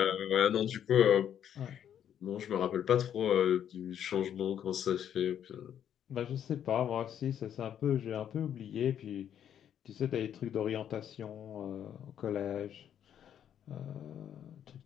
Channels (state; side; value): quieter; right; 9.6 dB